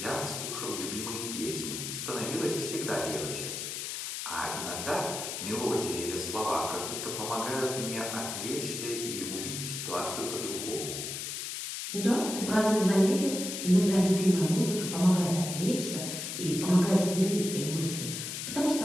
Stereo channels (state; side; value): noise; left; hiss, 5 dB below the sound